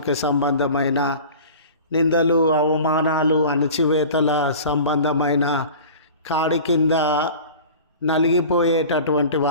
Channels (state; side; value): inverted; both; correlation -0.39